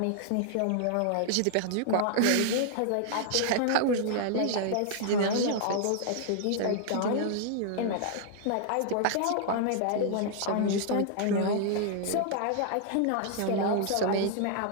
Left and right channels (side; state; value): both; different; correlation -0.01